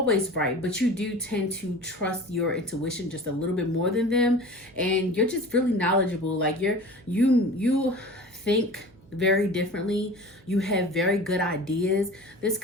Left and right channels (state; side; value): noise; right; hum, 27 dB below the sound